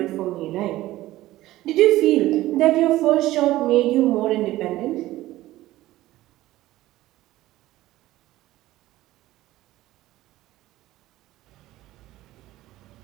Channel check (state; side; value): quieter; left; 16.1 dB